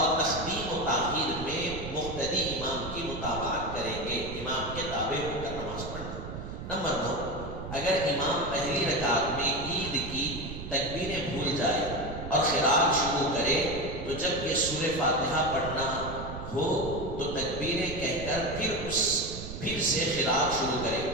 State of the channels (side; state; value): right; noise; rumble, 9 dB below the sound